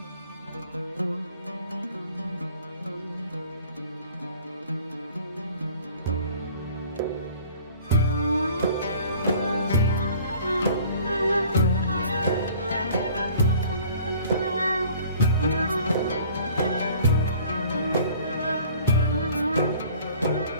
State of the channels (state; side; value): inverted; both; correlation -0.50